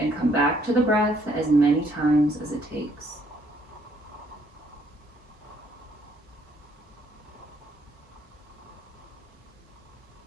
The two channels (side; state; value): both; normal; correlation 0.67